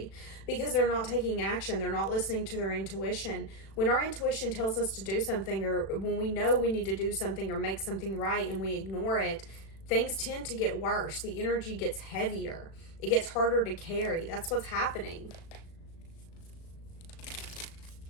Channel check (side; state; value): right; late; 36 ms